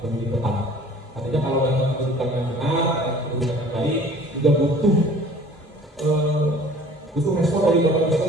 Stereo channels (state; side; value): normal; both; correlation 0.49